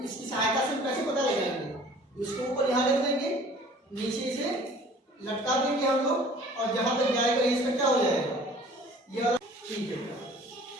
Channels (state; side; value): normal; both; correlation 0.49